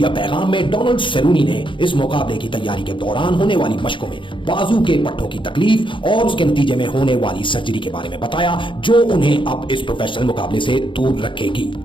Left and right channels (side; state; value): right; late; 0.24 ms